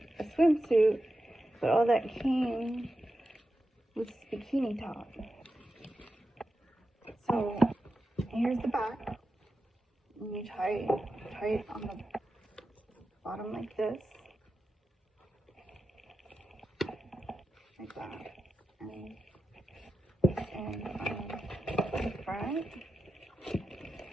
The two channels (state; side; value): normal; both; correlation 0.90